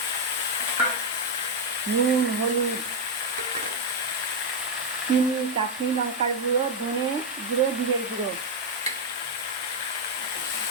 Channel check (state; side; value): normal; both; correlation 0.01